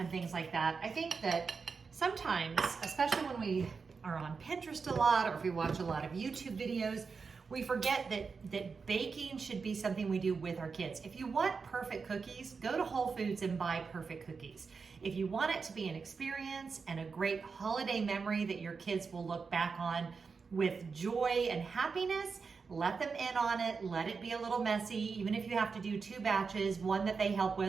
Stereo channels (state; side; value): quieter; left; 5.1 dB